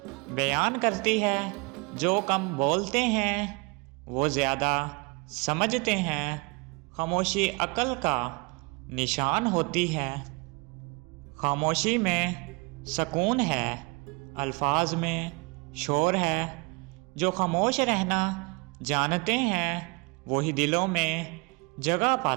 بیان کرتی ہے۔ جو کم بولتے ہیں وہ زیادہ سمجھتے ہیں۔ خاموشی عقل کا نشان ہوتی ہے۔ خاموشی میں سکون ہے، الفاظ میں شور ہے۔ جو خاموش رہنا جانتے ہیں وہی دلوں میں جگہ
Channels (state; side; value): quieter; left; 28.9 dB